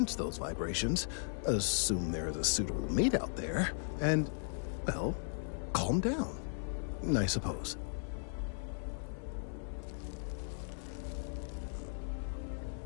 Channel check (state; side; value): silent; right; 53 dB below the other